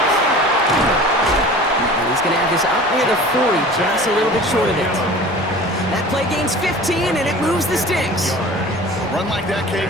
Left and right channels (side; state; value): both; normal; correlation 0.41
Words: And he's going to have this up near the 40, just a little bit short of it. That play gains 15, and it moves the sticks. A run like that, Kate,